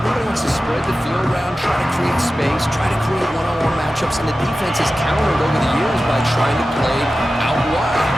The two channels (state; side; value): normal; both; correlation 0.94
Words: wants to spread the field around, try to create space, try to create one-on-one matchups, and the defense has countered over the years by trying to play out wide.